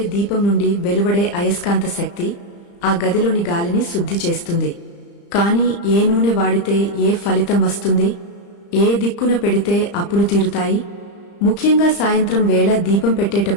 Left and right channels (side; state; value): right; late; 35 ms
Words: దీపం నుండి వెలువడే అయస్కాంత శక్తి ఆ గదిలోని గాలిని శుద్ధి చేస్తుంది. కాని ఏ నూనె వాడితే ఏ ఫలితం వస్తుంది? ఏ దిక్కున పెడితే అప్పులు తీరుతాయి? ముఖ్యంగా సాయంత్రం వేళ దీపం